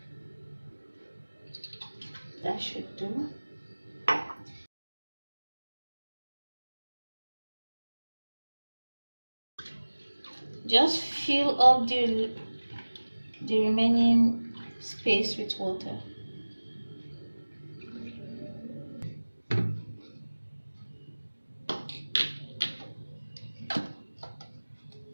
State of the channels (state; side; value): inverted; both; correlation -1.00